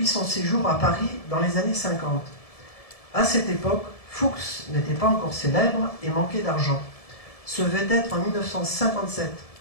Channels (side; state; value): right; late; 1.7 ms